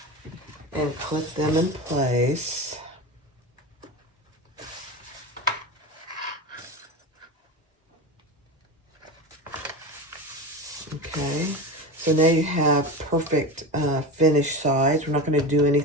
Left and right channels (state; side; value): normal; both; correlation 0.25